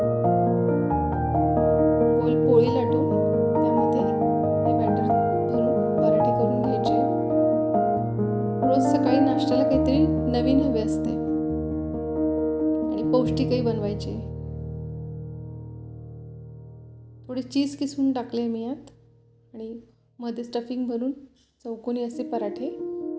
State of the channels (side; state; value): both; identical; correlation 1.00